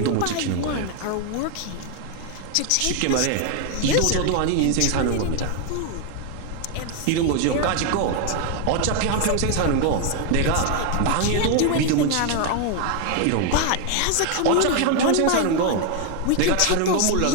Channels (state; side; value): different; both; correlation 0.01